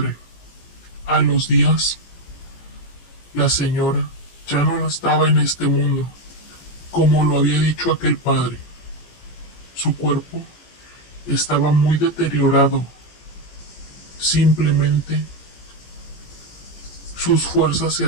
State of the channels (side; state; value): right; late; 17 ms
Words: A los días, la señora ya no estaba en este mundo, como lo había dicho aquel padre. Su cuerpo estaba muy deteriorado. Simplemente sus fuerzas se